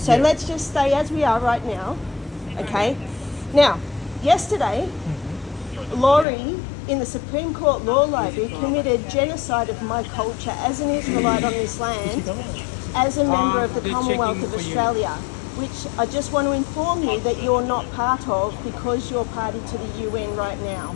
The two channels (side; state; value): right; drops out; at 6.2 s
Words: let's just stay as we are right now. Okay. Now, yesterday, Laurie in the Supreme Court Law Library committed genocide of my culture as an Israelite on this land, as a member of the Commonwealth of Australia, which I just want to inform you that you're not part of because you're party to the UN right now.